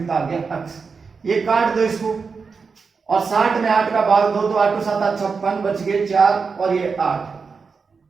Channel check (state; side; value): quieter; left; 5.1 dB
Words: आ गया, x। ये काट दो इसको, और 60 में 8 का भाग दो, तो 8 7 56, बच गए 4, और ये 8,